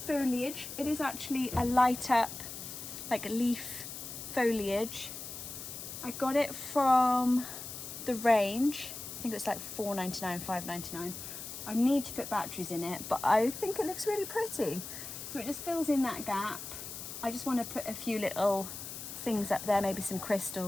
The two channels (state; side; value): noise; left; hiss, 9 dB below the sound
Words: It is actually a light up, like a leaf foliage. I got it from the range. I think it was like $4.99, $5.99. I need to put batteries in it, but I think it looks really pretty. So it just fills in that gap. I just want to put a few little things up there, maybe some